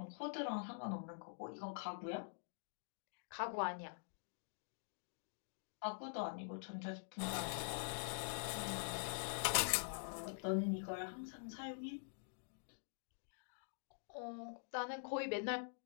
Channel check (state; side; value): silent; right; digital silence